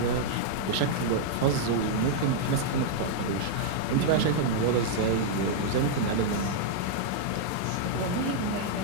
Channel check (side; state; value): both; different; correlation -0.01